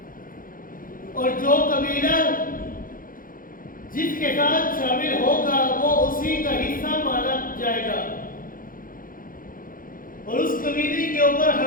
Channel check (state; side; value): late; right; 0.40 ms